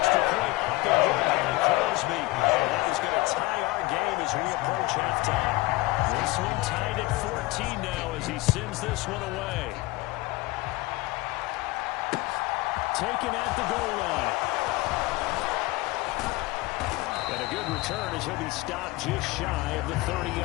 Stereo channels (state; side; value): quieter; right; 21.0 dB